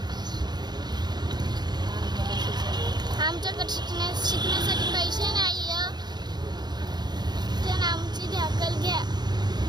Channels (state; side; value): late; left; 0.20 ms